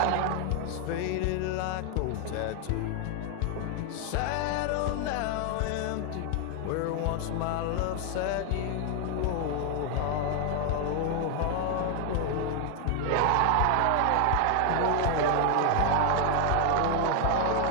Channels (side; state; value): both; different; correlation 0.00